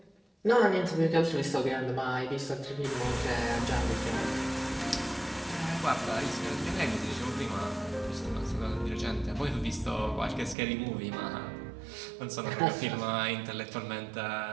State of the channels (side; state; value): left; drops out; at 10.6 s